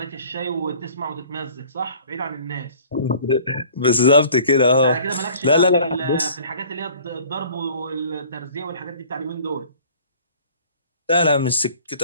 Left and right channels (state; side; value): inverted; both; correlation -0.50